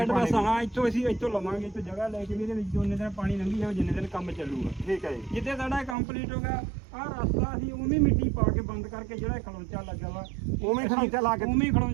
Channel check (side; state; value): left; drops out; at 6.0 s